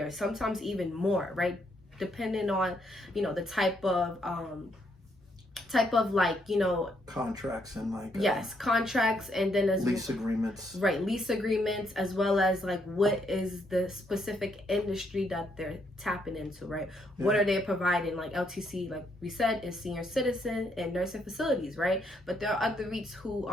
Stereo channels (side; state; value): both; normal; correlation 0.74